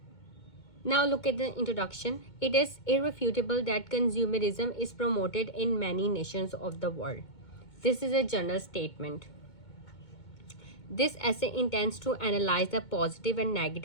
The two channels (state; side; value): late; right; 2.2 ms